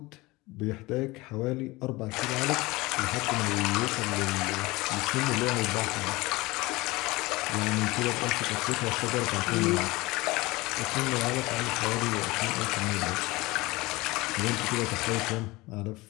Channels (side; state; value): right; quieter; 21.7 dB